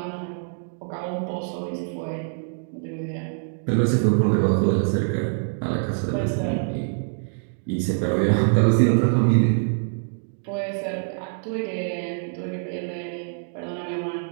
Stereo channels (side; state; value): left; silent; digital silence